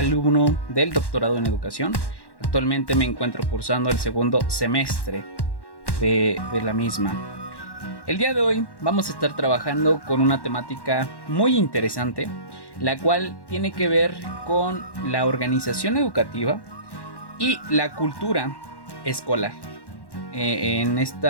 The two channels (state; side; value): late; right; 1.1 ms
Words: del doctorado en educación. Actualmente me encuentro cursando el segundo semestre de la misma. El día de hoy vamos a estar trabajando con una temática muy interesante, la cual tiene que ver con la organización educativa y la cultura escolar. En